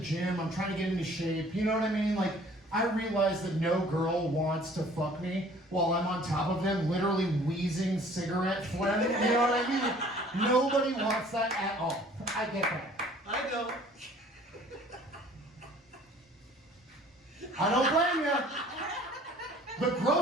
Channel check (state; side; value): normal; both; correlation 0.53